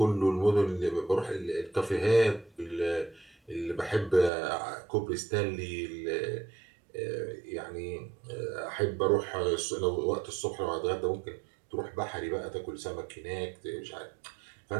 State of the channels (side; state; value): left; drops out; at 4.3 s